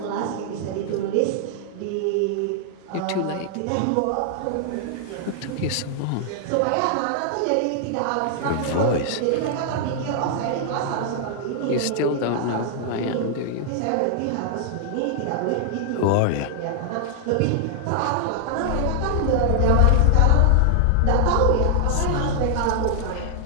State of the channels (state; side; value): different; both; correlation 0.00